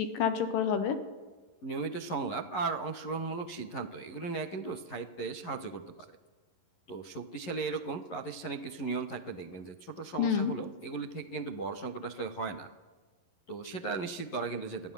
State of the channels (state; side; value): late; right; 11 ms